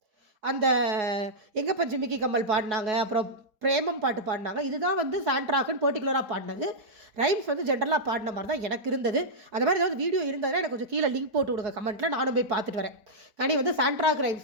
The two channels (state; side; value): late; left; 4.7 ms